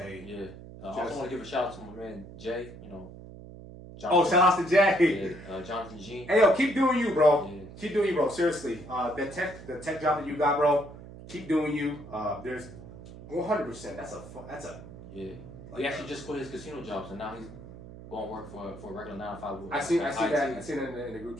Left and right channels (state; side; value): noise; right; hum, 15 dB below the sound